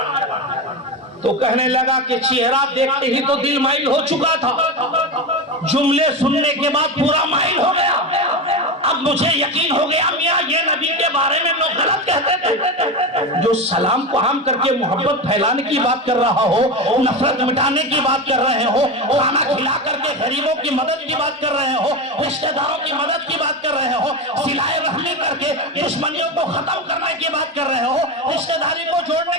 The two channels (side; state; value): both; normal; correlation 0.19